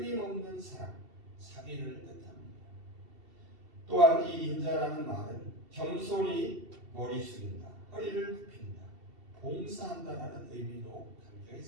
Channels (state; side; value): late; left; 2.7 ms